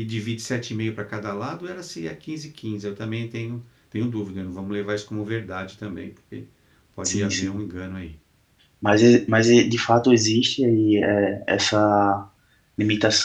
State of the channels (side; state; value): both; identical; correlation 1.00